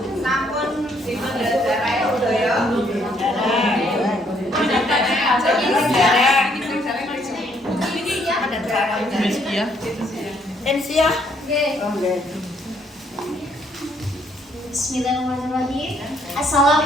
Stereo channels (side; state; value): both; normal; correlation 0.68